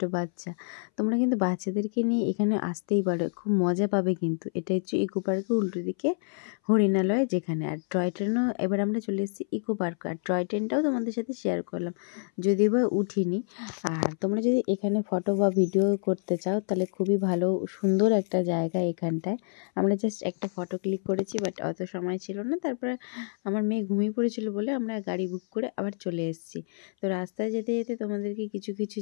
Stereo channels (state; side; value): silent; right; 59 dB below the other